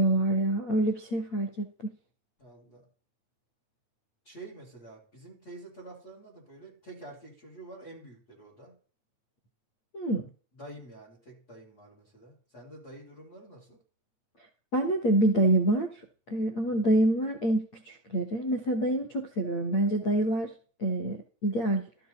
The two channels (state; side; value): late; right; 8.8 ms